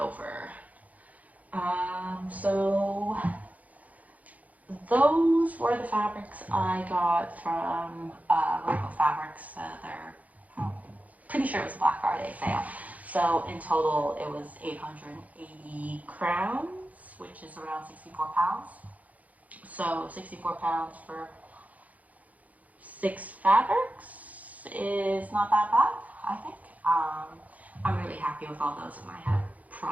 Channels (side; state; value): left; late; 0.075 ms